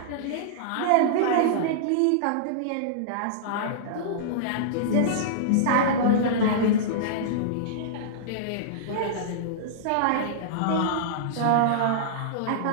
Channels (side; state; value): both; different; correlation -0.02